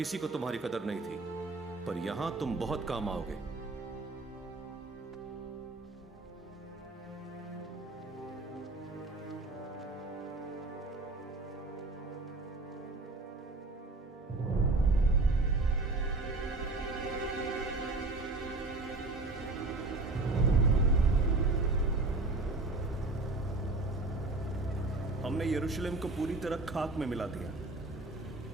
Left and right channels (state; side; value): quieter; left; 3.2 dB